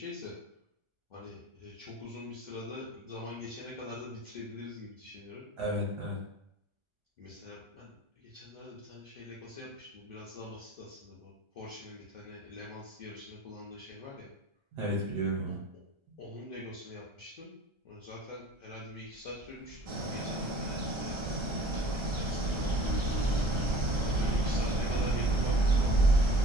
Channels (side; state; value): left; late; 1.3 ms